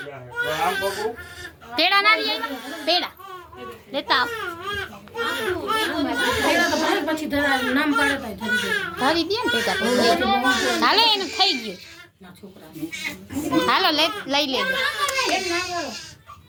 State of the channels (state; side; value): identical; both; correlation 1.00